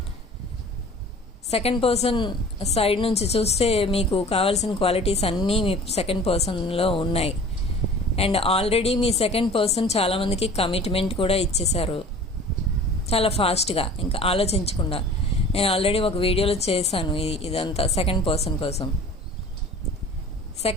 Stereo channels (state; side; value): normal; both; correlation 0.44